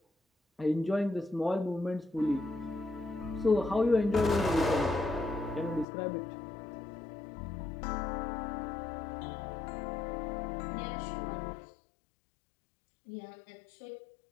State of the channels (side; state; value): right; drops out; at 5.9 s